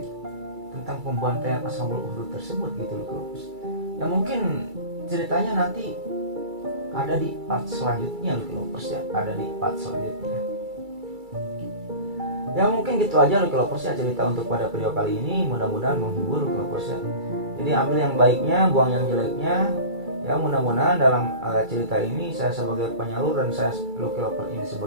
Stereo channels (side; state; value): left; late; 2.3 ms